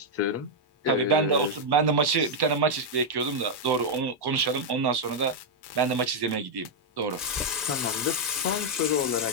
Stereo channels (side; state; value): both; normal; correlation -0.02